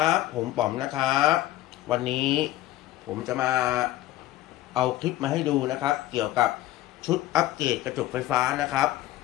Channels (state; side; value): quieter; right; 15.1 dB